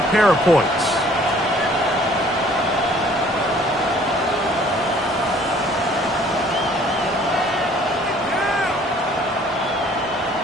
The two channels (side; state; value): both; normal; correlation 0.56